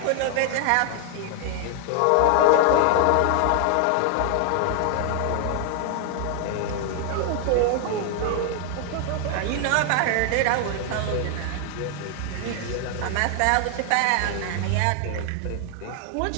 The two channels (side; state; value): both; different; correlation 0.00